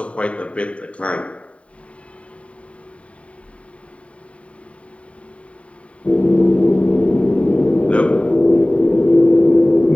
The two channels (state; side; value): late; right; 0.064 ms